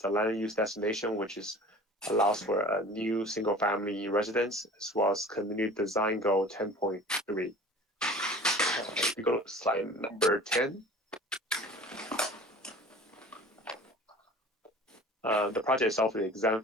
land use destination, which is allows for a new single-family residence, as well as community design goal 10.3. We go to slide number 10. The project itself is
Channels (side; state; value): both; normal; correlation 0.43